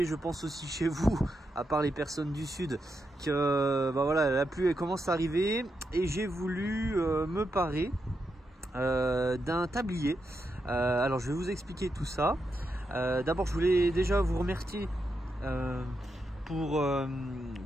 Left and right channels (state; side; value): normal; both; correlation 0.85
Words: je pense aussi chez vous, à part les personnes du sud, que voilà, la pluie elle commence à arriver et j'ai voulu me parer d'un tablier. Alors je vais vous expliquer tout ça. D'abord je voulais déjà vous remercier pour